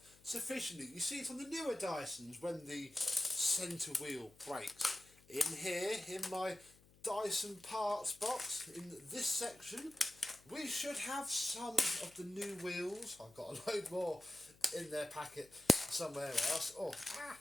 sufficiently. You see it on the newer Dysons when the centre wheel breaks. In here, in my Dyson parts box, in this section, we should have some of the new wheels. I've got a load more in their packet somewhere else.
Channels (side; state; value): left; noise; hum, 26 dB below the sound